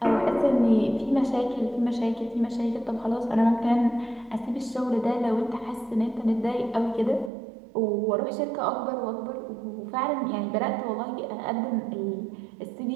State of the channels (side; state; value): left; drops out; at 7.3 s